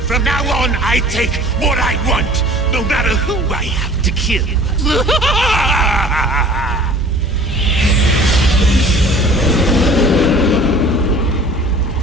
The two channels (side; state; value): both; normal; correlation 0.47